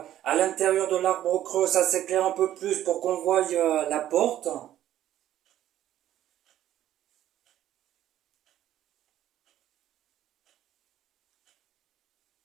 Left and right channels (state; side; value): quieter; left; 12.3 dB